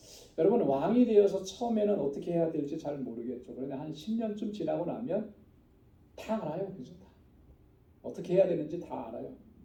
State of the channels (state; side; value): identical; both; correlation 1.00